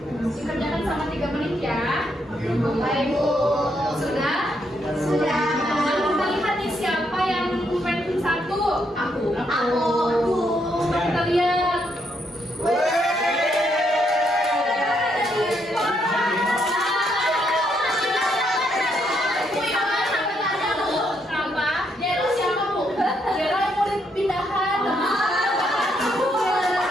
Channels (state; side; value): normal; both; correlation 0.76